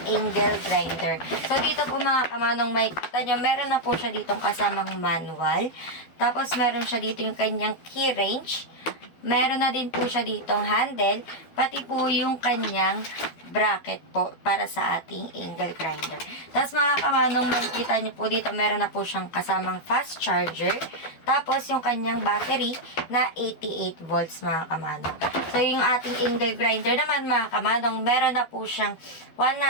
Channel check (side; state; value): right; late; 12 ms